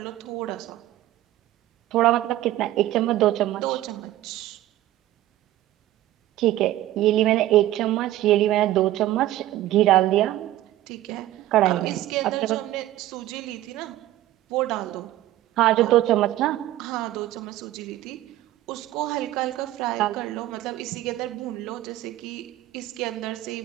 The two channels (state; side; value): quieter; left; 14.7 dB